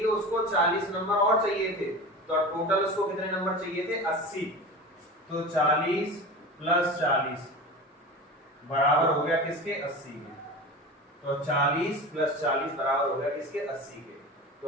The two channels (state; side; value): normal; both; correlation 0.31